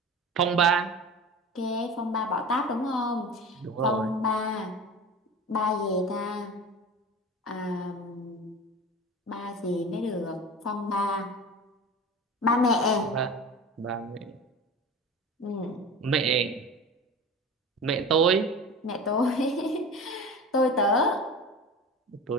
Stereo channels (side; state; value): both; normal; correlation 0.33